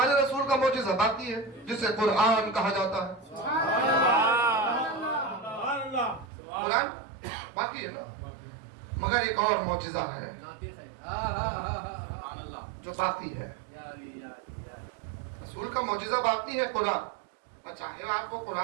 رسول کا معجزہ باقی ہے، جسے قرآن کہا جاتا ہے. قرآن باقی ہے نا. مگر ایک اور معجزہ ہے جو باقی ہے. رسول کا معجزہ باقی ہے قرآن، اور چاہے آپ کو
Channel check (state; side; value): drops out; left; at 6.2 s